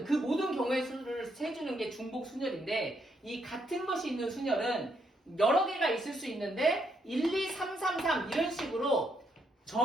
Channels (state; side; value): normal; both; correlation 0.76